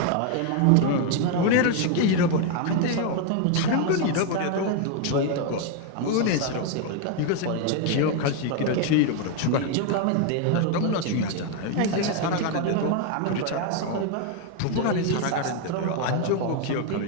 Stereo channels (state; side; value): different; both; correlation 0.01